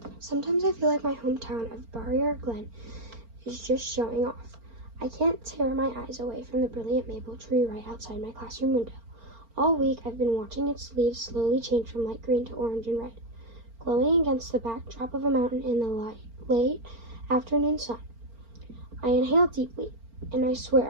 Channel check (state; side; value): late; left; 4.4 ms